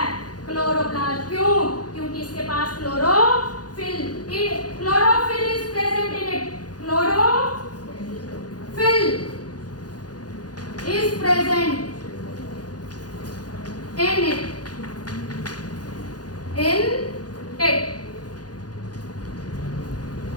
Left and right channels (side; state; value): right; late; 0.69 ms